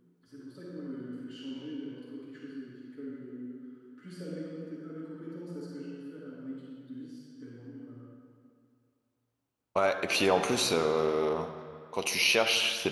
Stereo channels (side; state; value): both; identical; correlation 1.00